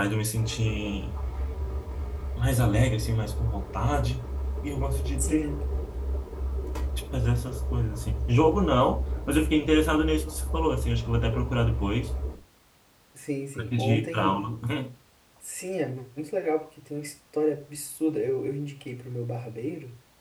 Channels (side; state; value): both; identical; correlation 1.00